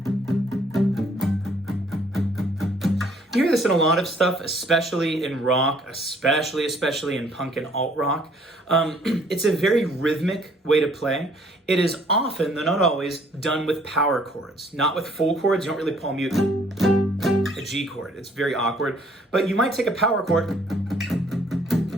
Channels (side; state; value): both; normal; correlation 0.61